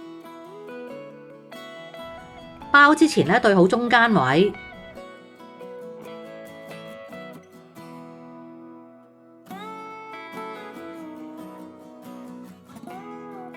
包之前咧對好中間位，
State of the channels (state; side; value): identical; both; correlation 1.00